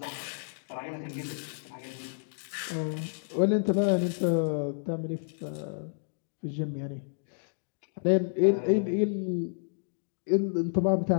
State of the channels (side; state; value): right; silent; digital silence